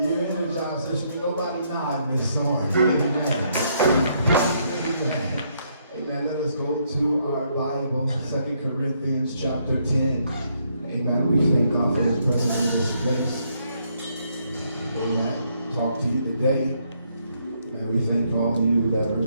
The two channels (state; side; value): inverted; both; correlation -0.73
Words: you're energized, there should be nobody nodding this morning. Amen. Amen. Amen. Let us go to our Bible, 2 Corinthians chapter 10. Amen. We thank God for His presence in this place. Amen. Talk to you today. And we thank all of you that are